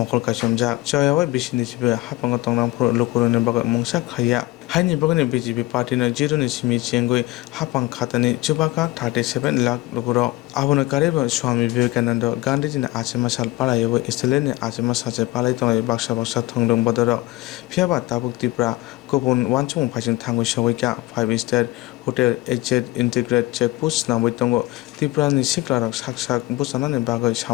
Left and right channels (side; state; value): right; quieter; 19.7 dB